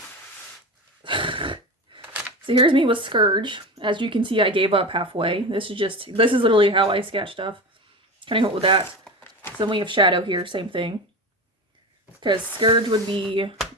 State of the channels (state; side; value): normal; both; correlation 0.26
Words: So here's me with Scourge. As you can see, I gave up halfway. This is literally how I sketch stuff. Kind of help with that. So then we have Shadow here, same thing. Because Scourge would be